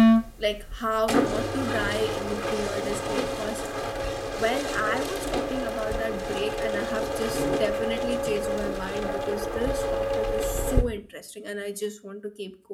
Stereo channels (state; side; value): identical; both; correlation 1.00